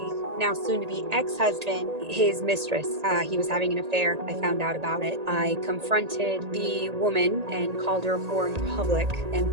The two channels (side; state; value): left; late; 1.8 ms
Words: now soon to be ex-husband, his mistress. He was having an affair. I found out about it. I confronted the woman and called her a whore in public. And